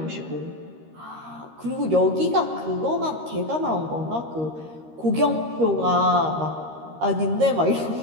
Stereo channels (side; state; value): left; late; 13 ms